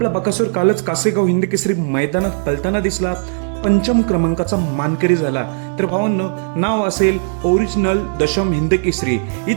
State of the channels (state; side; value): silent; left; 59 dB below the other